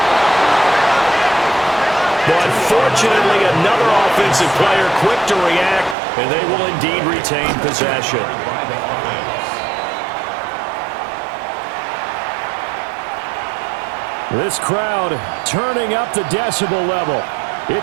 But fortunately, another offensive player quick to react, and they will indeed retain possession. This crowd turning up the decibel level.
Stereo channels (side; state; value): left; drops out; at 6.0 s